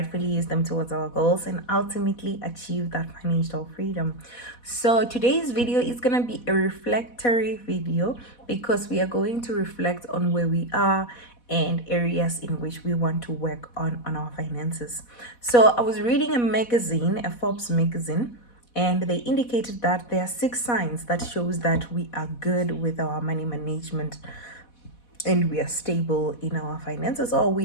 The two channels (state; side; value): late; right; 4.1 ms